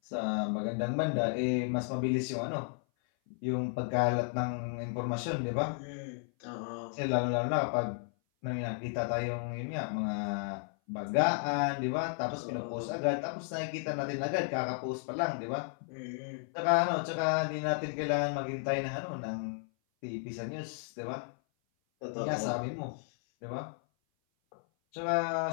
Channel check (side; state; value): right; silent; 55 dB below the other